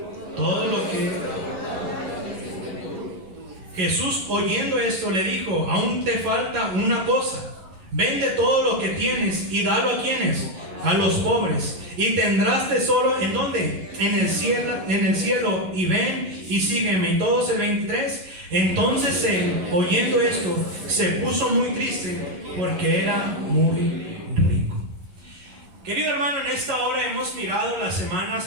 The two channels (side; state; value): left; late; 11 ms